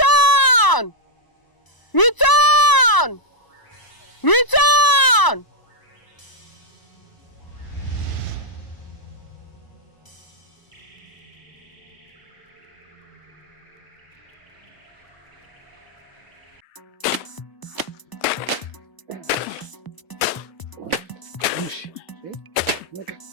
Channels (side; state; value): right; late; 1.0 ms